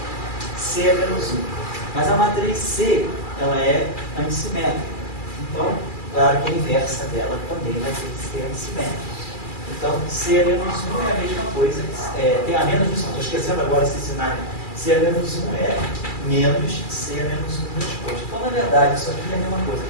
C é menos 1. Mas a matriz C, ela é antissimétrica. Então, claro que a inversa dela também vai ter que ser antissimétrica. Então, C é menos 1 é a mesma coisa, tem a menos 1, estou esquecendo agora esse cenário. C é menos 1 é menos C é menos 1 transposto. Então, na verdade, isso aqui é a mesma coisa.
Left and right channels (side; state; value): right; late; 2.3 ms